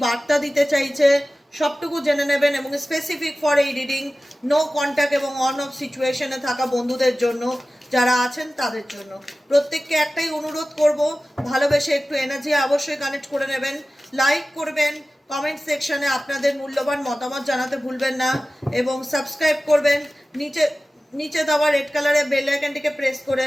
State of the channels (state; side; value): normal; both; correlation 0.96